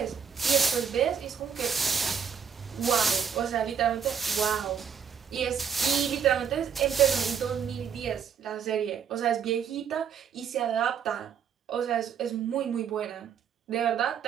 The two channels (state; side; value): quieter; left; 7.4 dB